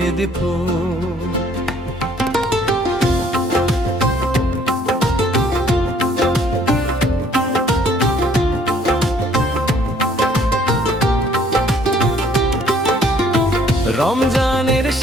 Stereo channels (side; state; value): both; normal; correlation 0.61